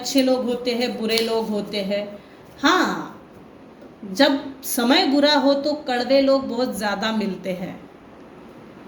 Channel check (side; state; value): both; identical; correlation 1.00